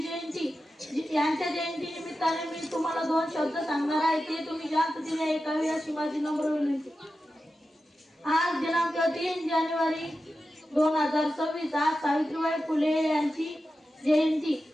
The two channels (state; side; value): normal; both; correlation 0.92